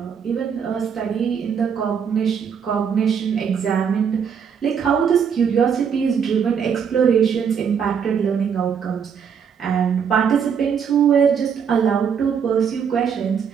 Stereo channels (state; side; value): quieter; left; 7.2 dB